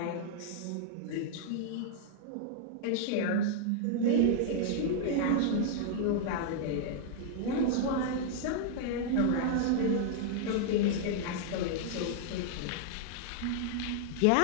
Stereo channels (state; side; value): different; both; correlation -0.01